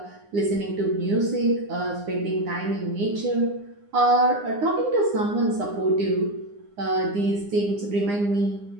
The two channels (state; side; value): late; left; 9.8 ms